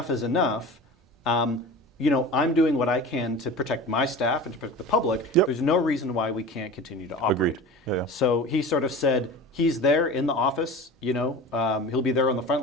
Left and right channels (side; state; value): both; normal; correlation 0.35